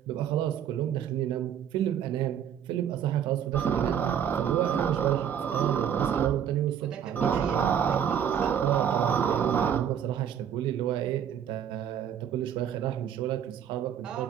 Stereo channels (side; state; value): left; quieter; 9.0 dB